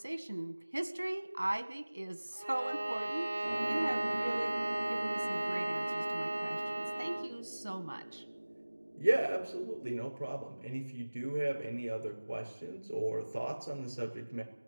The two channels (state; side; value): inverted; both; correlation -1.00